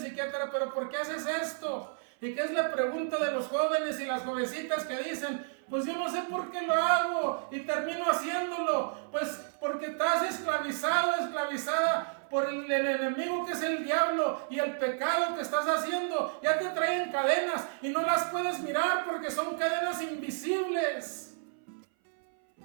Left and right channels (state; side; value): silent; left; 57 dB below the other